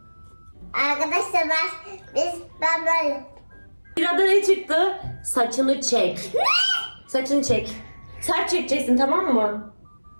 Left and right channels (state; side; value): inverted; both; correlation -1.00